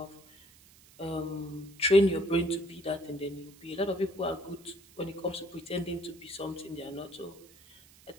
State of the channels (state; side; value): noise; right; hiss, 24 dB below the sound